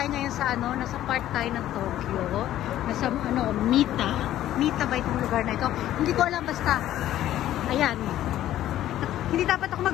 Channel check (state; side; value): quieter; right; 13.0 dB